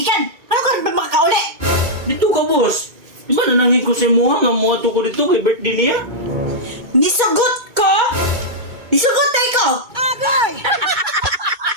Ano ka rin ba makakauli? Dito ka, boss. Di ba nanangin ko sa muha nga mo ato ko dito kay birthday niya? Nisugot ko? Nisugot tayo ko? Agay!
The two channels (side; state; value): left; late; 2.2 ms